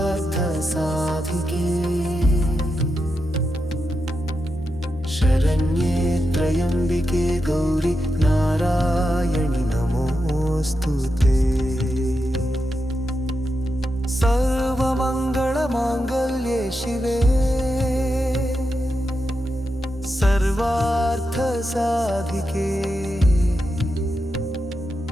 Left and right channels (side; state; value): both; normal; correlation 0.87